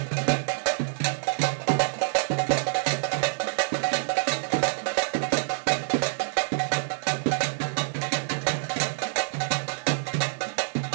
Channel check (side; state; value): left; silent; 60 dB below the other